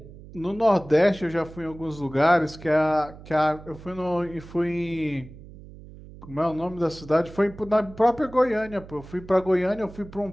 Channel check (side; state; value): right; noise; hum, 18 dB below the sound